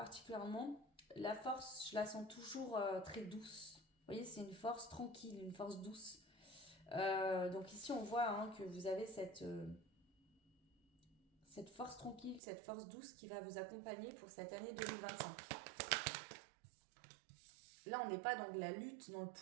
la force, je la sens toujours très douce. Vous voyez, c'est une force tranquille, une force douce. Donc ici, on voit que vous avez cette force tranquille, cette force douce qui va vous accompagner pour cette année 2025. Là, on n'est pas dans de la lutte, dans le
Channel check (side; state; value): left; drops out; at 12.4 s